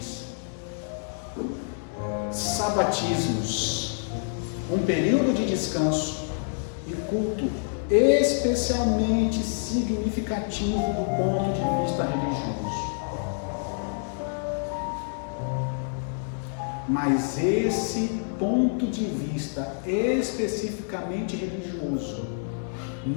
sabatismos, um período de descanso e culto especialmente significativo do ponto de vista religioso. Mas esse ponto de vista especificamente religioso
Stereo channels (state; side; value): silent; right; 60 dB below the other